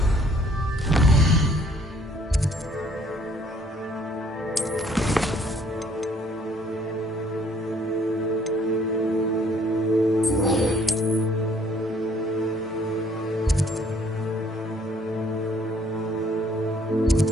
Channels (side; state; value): both; normal; correlation 0.61